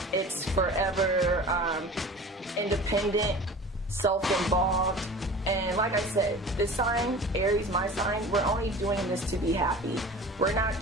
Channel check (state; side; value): normal; both; correlation 0.39